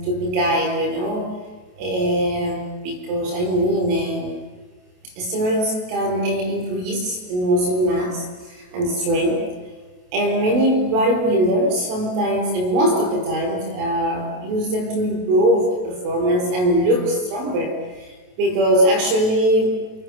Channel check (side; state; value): left; late; 28 ms